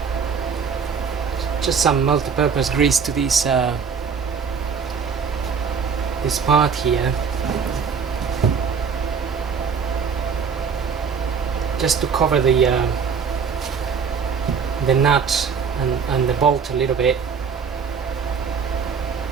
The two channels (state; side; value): quieter; left; 6.1 dB